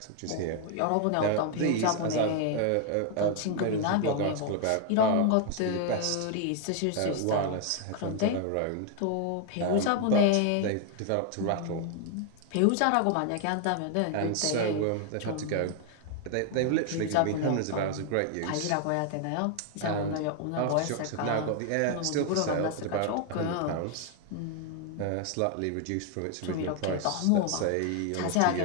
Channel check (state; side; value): different; both; correlation 0.00